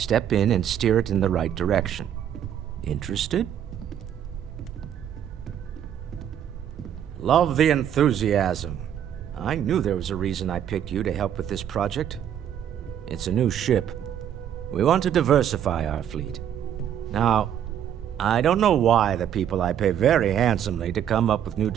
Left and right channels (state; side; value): quieter; left; 9.8 dB